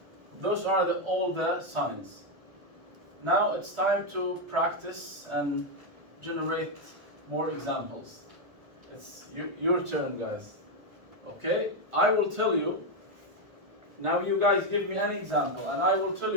those are all the signs. Now it's time to practice and generate more examples. It's your turn, guys. Okay? I will tell you. Now you guys give me any example, and I will tell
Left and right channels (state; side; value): late; left; 1.2 ms